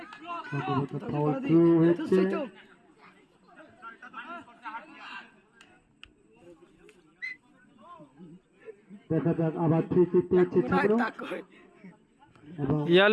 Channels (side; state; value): both; identical; correlation 1.00